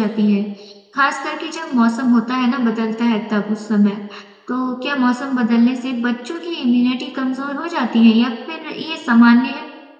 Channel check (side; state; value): both; identical; correlation 1.00